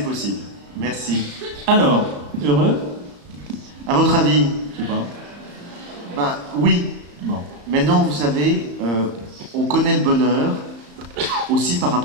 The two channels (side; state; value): left; late; 34 ms